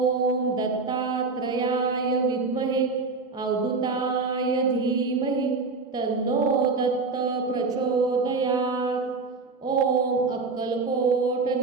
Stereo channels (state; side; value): quieter; left; 4.2 dB